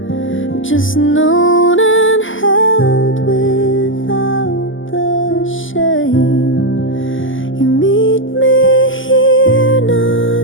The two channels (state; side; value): late; right; 0.57 ms